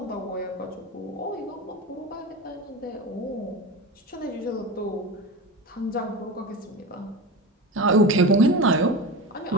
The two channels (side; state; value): both; normal; correlation 0.25